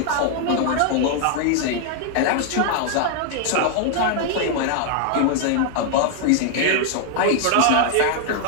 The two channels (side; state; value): both; different; correlation 0.00